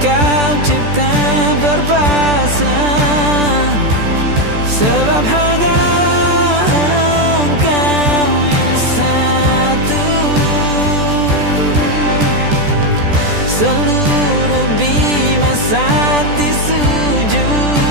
kau cipta berpasang, sebab hanya engkau yang satu. Seluruh bima sakti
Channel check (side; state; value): left; late; 14 ms